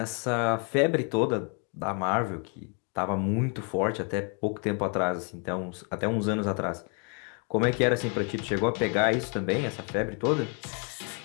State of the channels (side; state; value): right; quieter; 36.7 dB